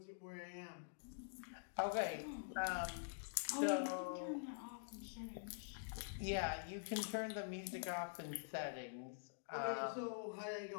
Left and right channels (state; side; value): silent; right; digital silence